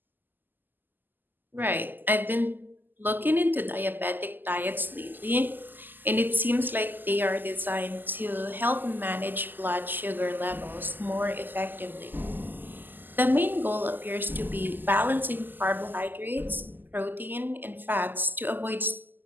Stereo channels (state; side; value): late; left; 0.090 ms